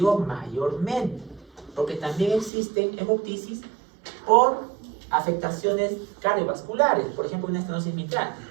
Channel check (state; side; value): drops out; left; at 2.5 s